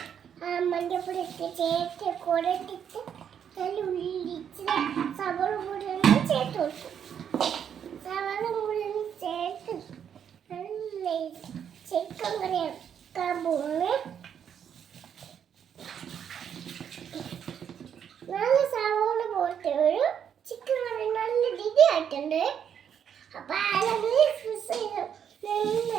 മഞ്ഞപ്പൊടി ഇട്ട് ചേർത്ത് കുടട്ടിട്ട് അതിൽ ഉള്ളി ഇച്ചിരി സവോള കൂടി ഒന്ന് ചേർത്ത് കൊടുക്കും. സവോള കൂടി ഒന്ന് ചേർത്ത് ചിക്കൻ കറി വെക്കാൻ പോകുന്നു. നല്ല സവോള പോയിട്ട് ഒരു ചിക്കൻ കറി നല്ല രുചി ആയിട്ടുണ്ട്. അപ്പൊ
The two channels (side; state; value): left; quieter; 8.4 dB